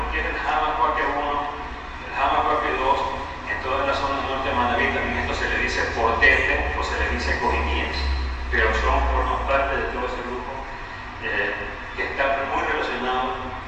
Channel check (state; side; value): identical; both; correlation 1.00